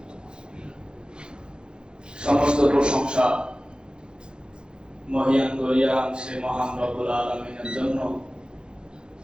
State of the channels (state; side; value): late; left; 0.049 ms